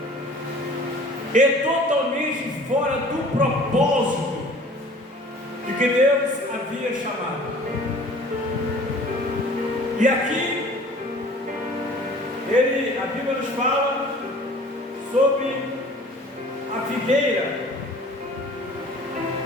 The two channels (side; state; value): both; normal; correlation 0.47